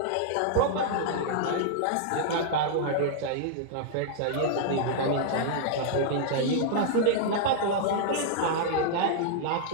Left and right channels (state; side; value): different; both; correlation -0.01